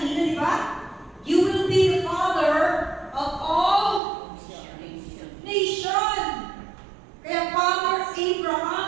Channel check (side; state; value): left; drops out; at 4.0 s